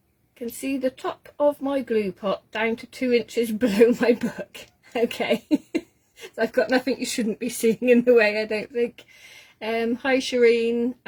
see the top of my glue pot down to 2 inches below my book. Okay. So I've got nothing you shouldn't be seeing in the way, I don't think. Hi Shireen,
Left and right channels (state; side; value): identical; both; correlation 1.00